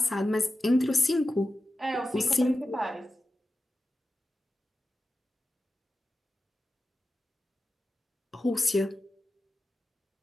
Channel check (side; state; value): both; normal; correlation 0.93